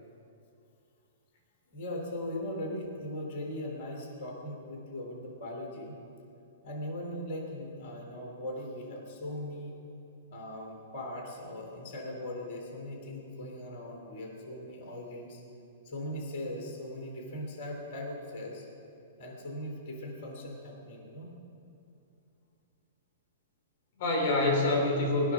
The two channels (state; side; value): inverted; both; correlation -0.33